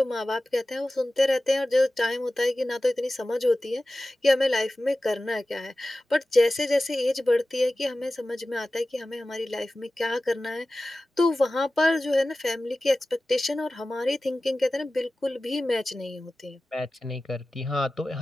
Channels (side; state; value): both; normal; correlation 0.96